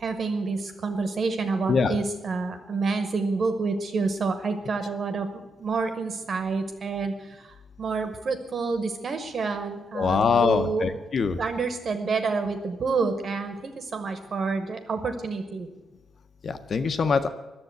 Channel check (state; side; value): normal; both; correlation 0.79